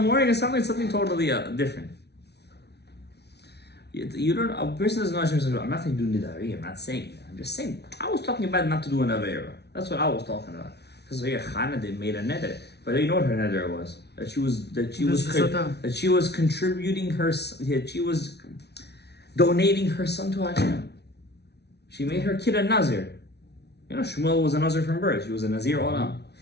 and suddenly something totally different. You don't, a person doesn't know Hashem says, I'm not saying do nidari, I'm not saying that. I'm just saying, I was talking about not to do an avera. That's what I was talking about. Because here, Chana, they made a neder. But you know what her neder was? That she was contributing that she was donating her son to Hashem. She made her kid a Nazir. You know, Shmuel was a Nazir from birth. She was a Nazir Olam.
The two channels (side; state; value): right; late; 0.49 ms